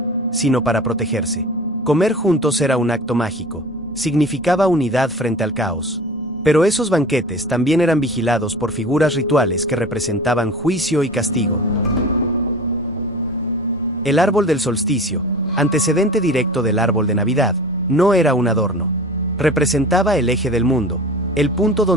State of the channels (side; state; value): both; normal; correlation 0.37